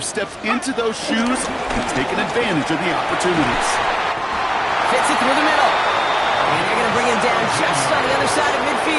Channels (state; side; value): identical; both; correlation 1.00